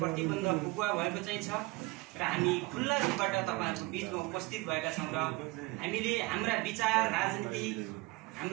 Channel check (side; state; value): left; quieter; 22.9 dB